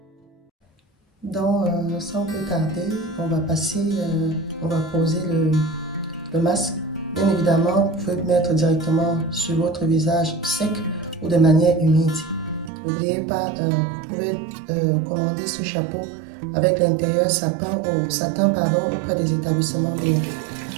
Donc, sans plus tarder, on va poser le masque. Bien évidemment, vous pouvez le mettre directement sur votre visage sec ou de manière humide. N'oubliez pas, vous pouvez commander ce chapeau avec l'intérieur satin auprès des établissements privés.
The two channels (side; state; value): left; drops out; at 12.7 s